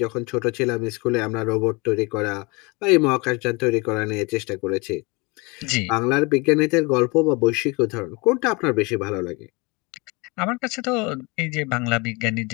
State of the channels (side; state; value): right; quieter; 27.3 dB